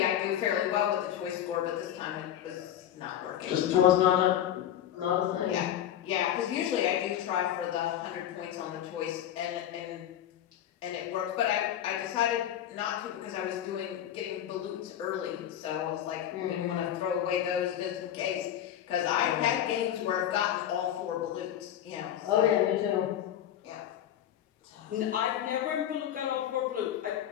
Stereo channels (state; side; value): quieter; right; 10.9 dB